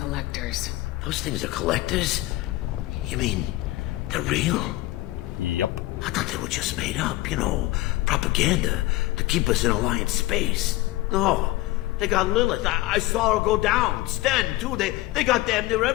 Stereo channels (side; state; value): right; quieter; 18.3 dB